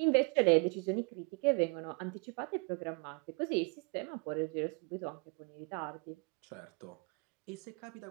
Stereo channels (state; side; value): quieter; left; 33.2 dB